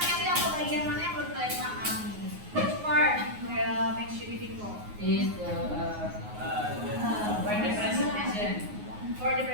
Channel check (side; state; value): left; late; 9.5 ms